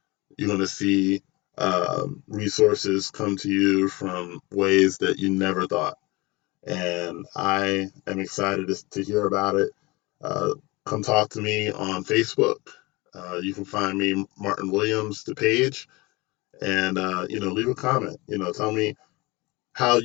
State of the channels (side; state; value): right; quieter; 23.6 dB